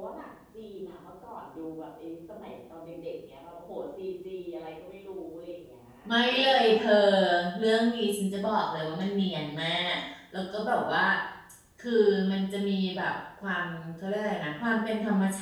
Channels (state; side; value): identical; both; correlation 1.00